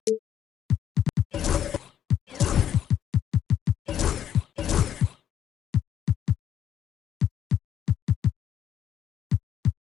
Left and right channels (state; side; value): quieter; right; 9.9 dB